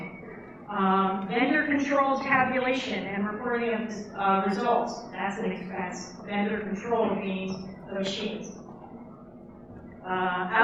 Vendor-controlled tabulation and reporting of results, that's an expense. Vendor-controlled means the machines.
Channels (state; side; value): identical; both; correlation 1.00